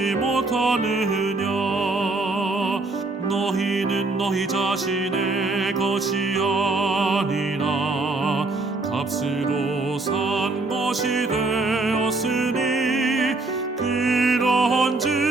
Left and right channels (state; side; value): quieter; left; 3.3 dB